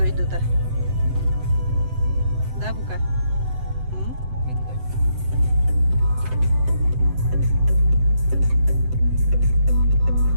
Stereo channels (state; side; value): late; left; 7.8 ms